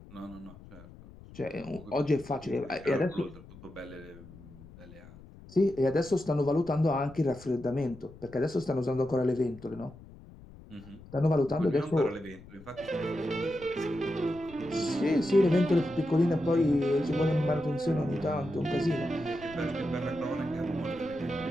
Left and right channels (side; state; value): left; noise; rumble, 19 dB below the sound